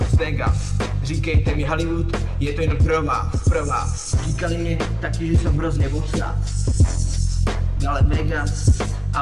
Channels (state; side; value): identical; both; correlation 1.00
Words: Vegas. Říkejte mi Hollywood, je to jen pro vás. Říkali mi taky, že jsem hrozně obsaz, ale Vegas.